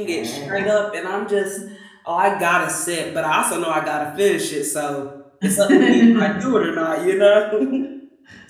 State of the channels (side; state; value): both; identical; correlation 1.00